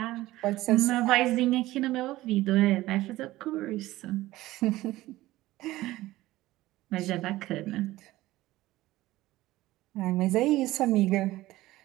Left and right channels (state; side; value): quieter; left; 17.0 dB